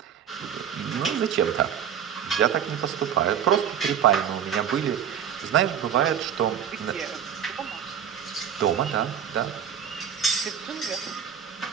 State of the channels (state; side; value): quieter; left; 8.6 dB